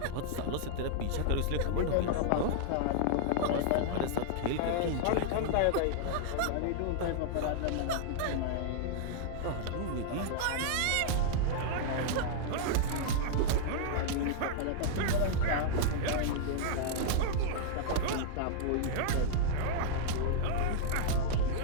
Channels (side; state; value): both; different; correlation -0.01